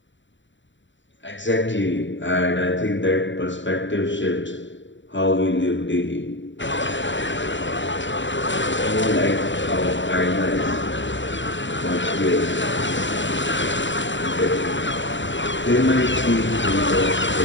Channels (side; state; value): right; late; 0.54 ms